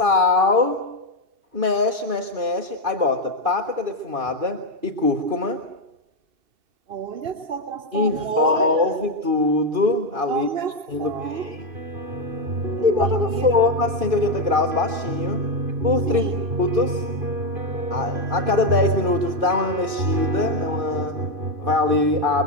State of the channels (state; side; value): late; left; 2.5 ms